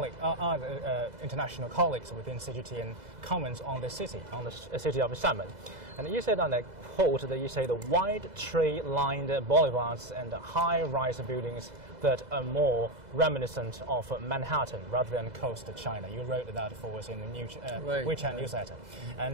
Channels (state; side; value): late; left; 2.0 ms